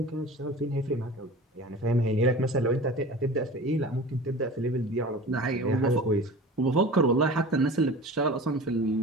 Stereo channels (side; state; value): both; normal; correlation 0.38